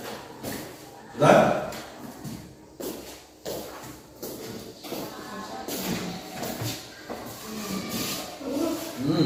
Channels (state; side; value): identical; both; correlation 1.00